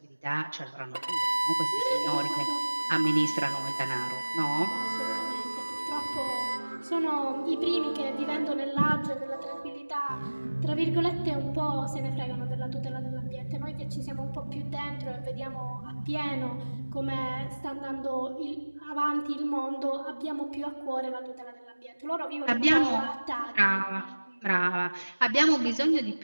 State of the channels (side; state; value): both; inverted; correlation -1.00